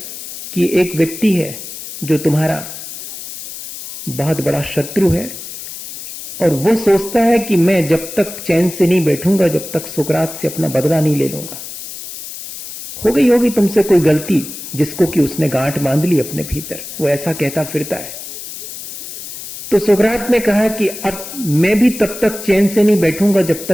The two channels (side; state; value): left; noise; hiss, 11 dB below the sound